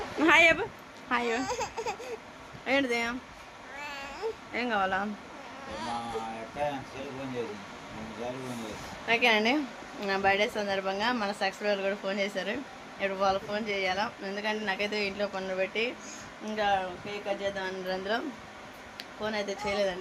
హాయ్ అబ్బా హాయ్ ఏంటిది ఏం కావాలా ఓకేనండి నా బర్త్డే సందర్భంగా మన సబ్స్క్రైబర్లు కూడా ఫోన్ చేశారు. ఇప్పుడు వాళ్ళు ఫోన్ చేయాలా ఎందుకంటే నాకైతే ఇంట్లో పనులు పెట్టి ఇంకా కేక్ కట్ చేద్దాం అందులో ఫోన్ అయితే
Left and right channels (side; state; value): both; identical; correlation 1.00